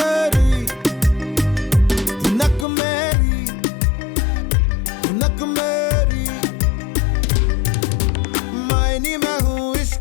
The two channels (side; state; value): right; drops out; at 2.7 s